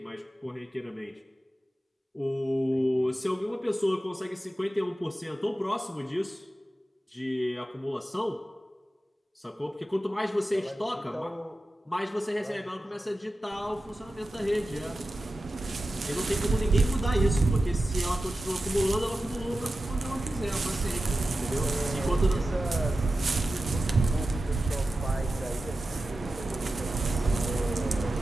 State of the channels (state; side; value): normal; both; correlation 0.93